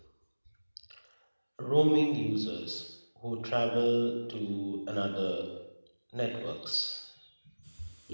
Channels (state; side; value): inverted; both; correlation -1.00